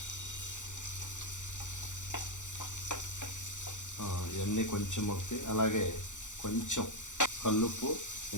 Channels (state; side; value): late; right; 0.85 ms